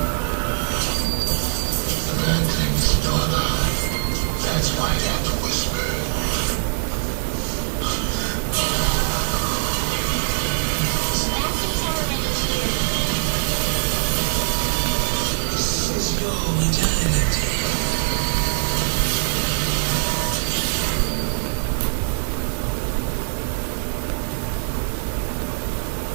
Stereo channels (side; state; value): left; silent; 64 dB below the other